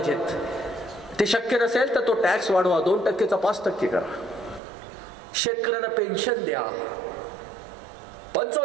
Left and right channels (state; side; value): drops out; left; at 4.6 s